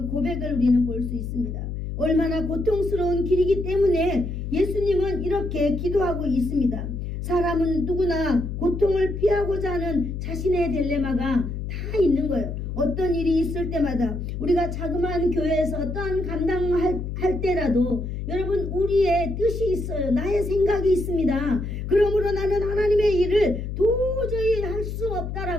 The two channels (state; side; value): noise; left; hum, 5 dB below the sound